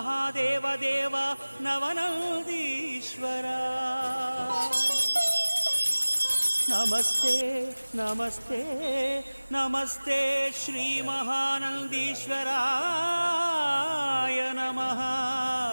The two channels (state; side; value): inverted; both; correlation -1.00